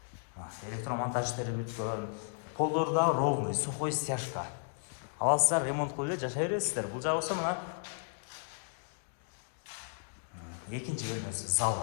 Электромонтаж иштери бүткөн, полдору да ровный, сухой стяжка. Аласыздар, ремонт кылып эле жашай бересиздер. Бул жагы болсо мына экинчи бөлмөсү,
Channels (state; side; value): silent; right; digital silence